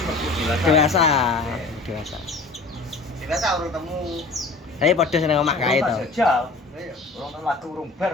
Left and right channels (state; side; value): quieter; right; 3.5 dB